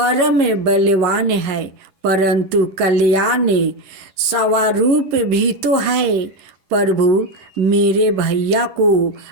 बलवान है, परंतु कल्याण स्वरूप भी तो है। प्रभु, मेरे भैया को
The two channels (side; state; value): left; late; 10 ms